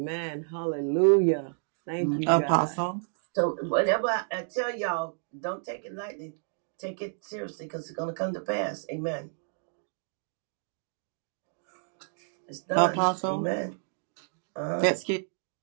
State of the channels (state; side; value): silent; left; digital silence